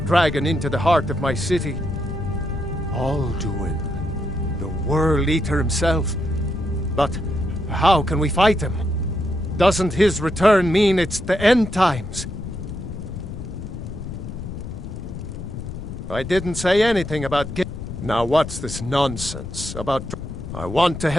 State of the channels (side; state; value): left; noise; rumble, 9 dB below the sound